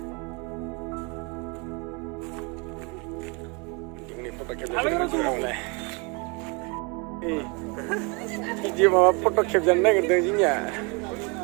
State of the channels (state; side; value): quieter; left; 31.1 dB